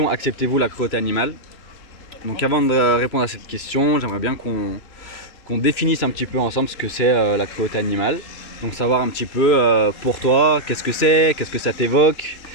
acceptez-vous la cruauté animale? Donc, avant de répondre à cette question, j'aimerais bien qu'on définisse un petit peu ensemble ce que c'est la cruauté animale. Donc, savoir un petit peu pour toi, qu'est-ce que c'est, qu'est-ce que ça t'évoque,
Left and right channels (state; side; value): late; right; 2.9 ms